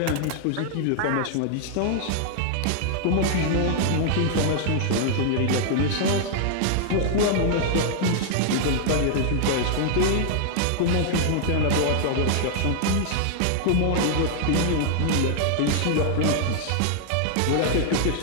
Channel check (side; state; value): both; different; correlation -0.01